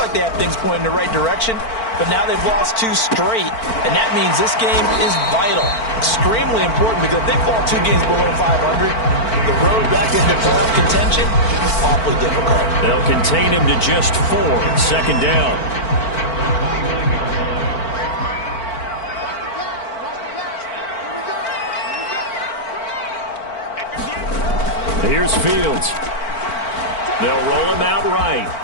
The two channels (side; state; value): right; late; 4.5 ms